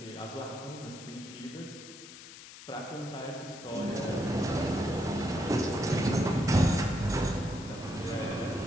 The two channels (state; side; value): noise; left; hiss, 15 dB below the sound